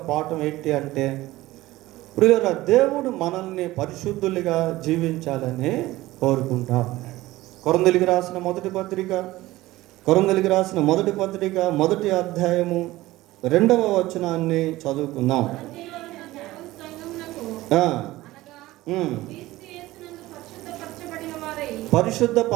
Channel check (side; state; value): left; quieter; 17.6 dB